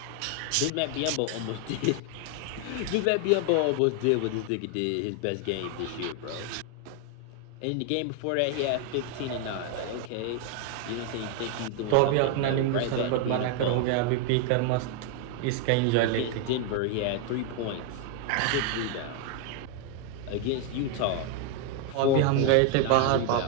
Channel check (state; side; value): different; both; correlation 0.01